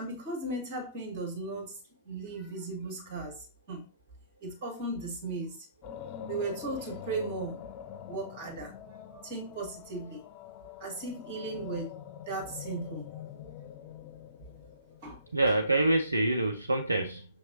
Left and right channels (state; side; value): inverted; both; correlation -0.59